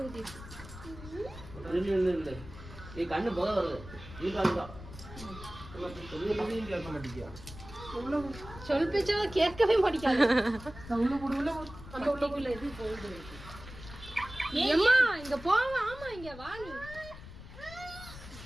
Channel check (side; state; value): left; noise; rumble, 15 dB below the sound